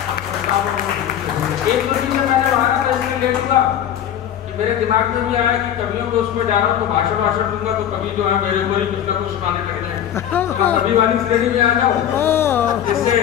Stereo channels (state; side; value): quieter; right; 10.2 dB